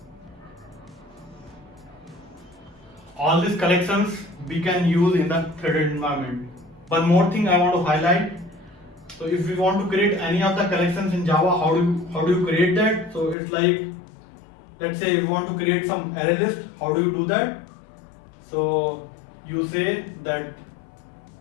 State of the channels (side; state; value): right; drops out; at 13.4 s